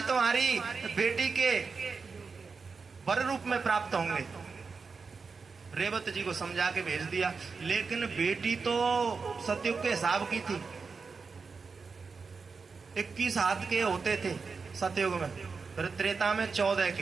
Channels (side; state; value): left; quieter; 4.9 dB